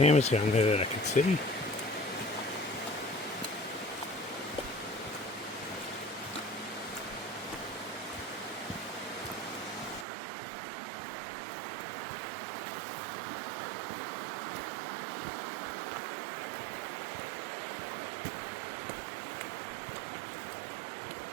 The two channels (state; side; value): drops out; left; at 10.1 s